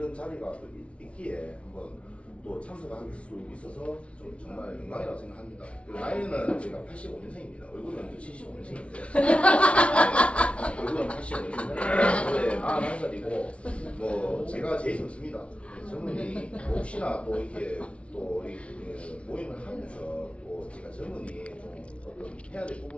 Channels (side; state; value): right; late; 0.061 ms